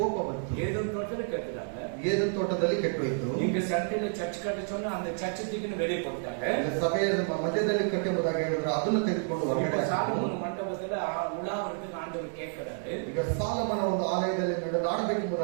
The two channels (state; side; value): silent; left; 58 dB below the other